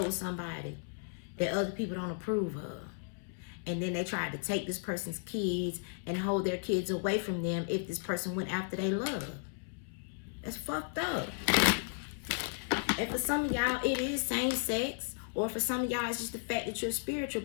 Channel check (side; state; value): right; silent; 55 dB below the other